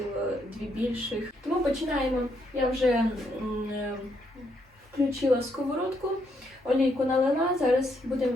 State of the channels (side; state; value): both; normal; correlation 0.76